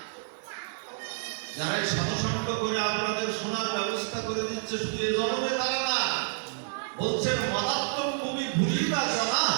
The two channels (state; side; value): silent; left; 59 dB below the other